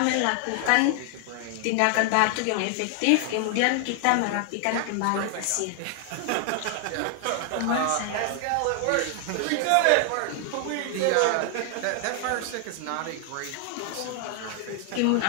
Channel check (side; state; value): both; different; correlation 0.00